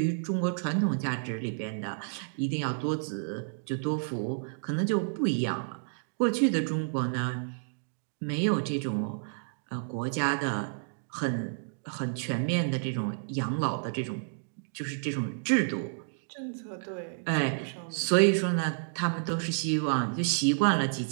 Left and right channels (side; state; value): left; silent; digital silence